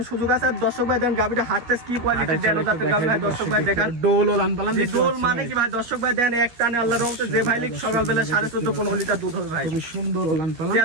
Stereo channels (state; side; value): late; left; 13 ms